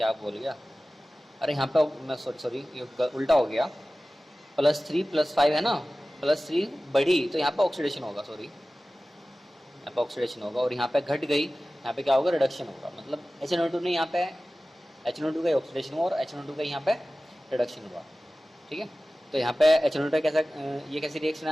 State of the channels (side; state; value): both; normal; correlation 0.97